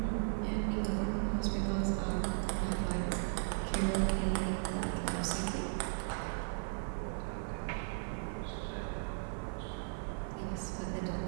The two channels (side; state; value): left; silent; 53 dB below the other